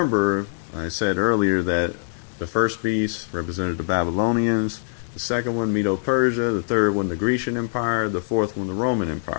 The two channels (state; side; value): silent; right; digital silence